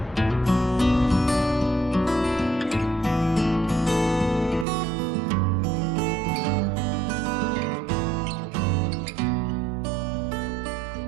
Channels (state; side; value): drops out; left; at 4.7 s